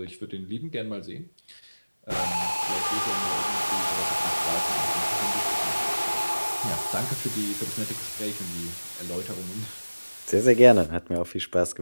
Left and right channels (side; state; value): both; inverted; correlation -1.00